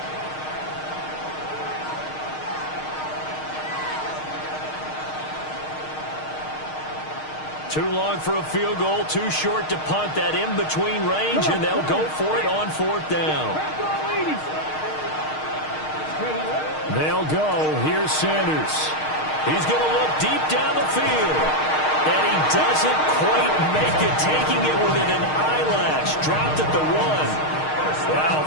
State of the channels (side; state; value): right; late; 6.5 ms